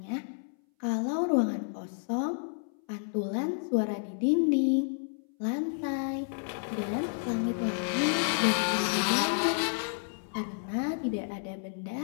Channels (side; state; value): right; silent; 57 dB below the other